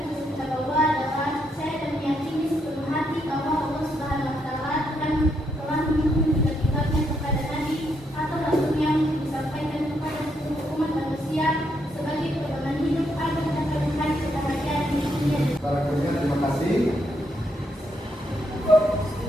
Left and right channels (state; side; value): normal; both; correlation 0.77